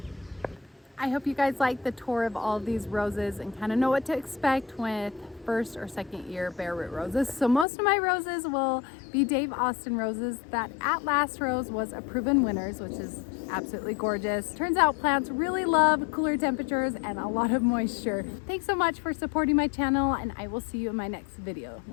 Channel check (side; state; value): right; drops out; at 7.7 s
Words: I hope you guys like the tour of all of these roses and kind of know what to expect with first or second year bare root roses. So most of my roses will be Dave Austin roses. That At Last rose was a proven winners, which is absolutely gorgeous. Turns out plants really love cooler temperatures and a lot of moisture. Thanks so much for supporting my channel, and I will see you in my next video.